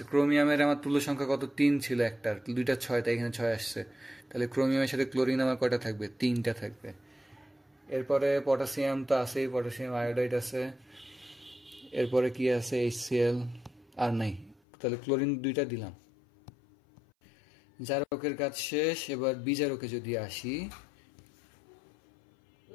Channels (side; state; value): right; drops out; at 14.6 s